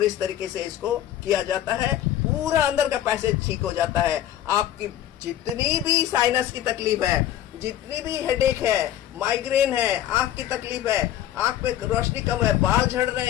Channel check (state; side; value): quieter; right; 12.0 dB